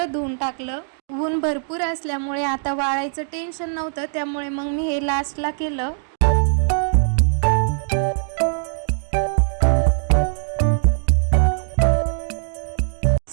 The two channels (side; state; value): left; silent; digital silence